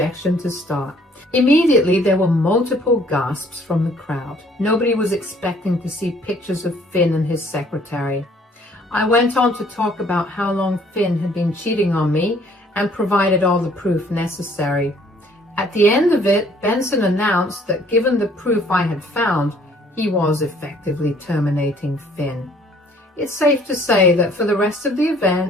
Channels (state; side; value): normal; both; correlation 0.59